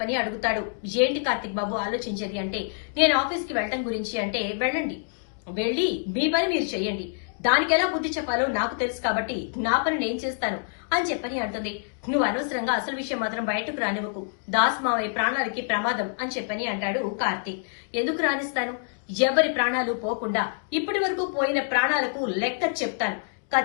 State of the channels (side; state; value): right; silent; digital silence